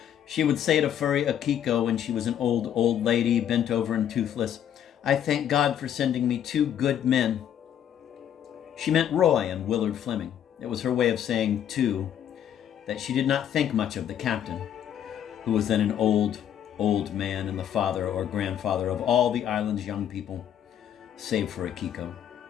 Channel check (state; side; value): quieter; right; 9.9 dB